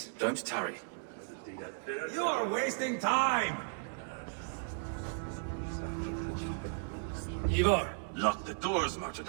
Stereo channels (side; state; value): left; silent; 54 dB below the other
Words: don't tarry. You are wasting time! Ivar, Lock the doors, murder